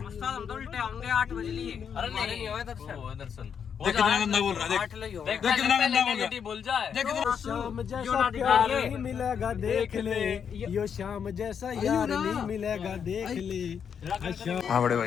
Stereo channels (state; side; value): quieter; right; 7.4 dB